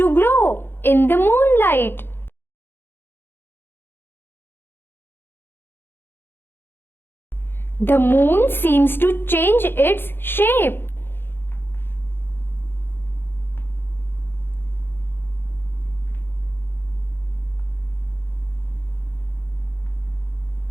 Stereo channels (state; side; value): late; right; 0.10 ms